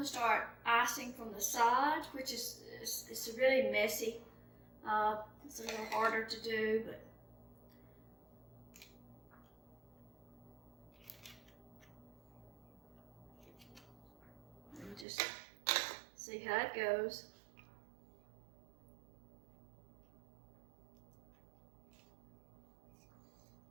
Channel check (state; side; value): drops out; left; at 15.1 s